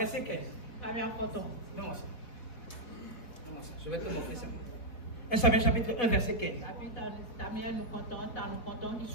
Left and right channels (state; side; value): late; right; 4.2 ms